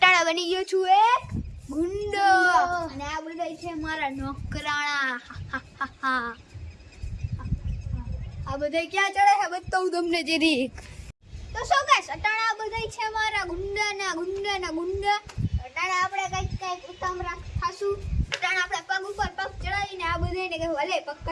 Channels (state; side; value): identical; both; correlation 1.00